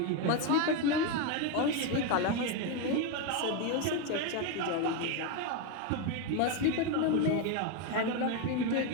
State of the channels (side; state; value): both; different; correlation 0.02